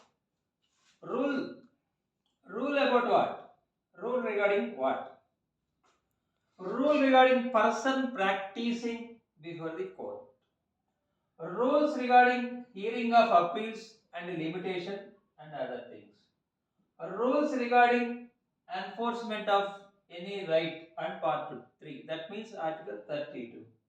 rule about what? Rule regarding what? Rule regarding person practicing before the court. Rules regarding hearing of appeals and limitation and other things. Rules regarding enforcement of any right and part 3. That means Article 32.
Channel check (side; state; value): both; identical; correlation 1.00